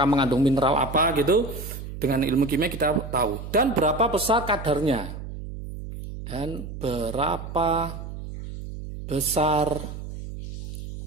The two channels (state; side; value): noise; right; hum, 9 dB below the sound